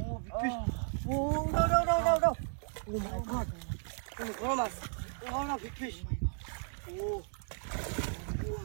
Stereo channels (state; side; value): silent; left; 55 dB below the other